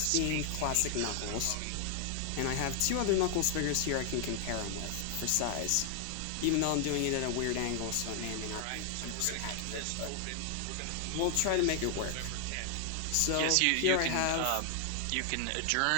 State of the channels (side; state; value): both; different; correlation 0.00